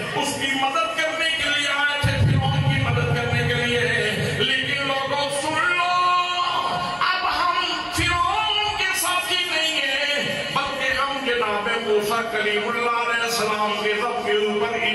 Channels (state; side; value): identical; both; correlation 1.00